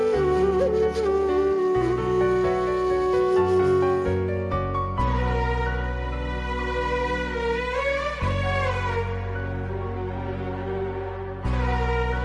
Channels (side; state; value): both; identical; correlation 1.00